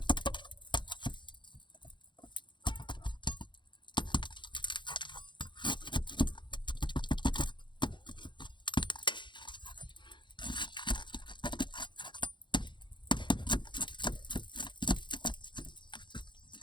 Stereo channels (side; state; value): right; late; 0.23 ms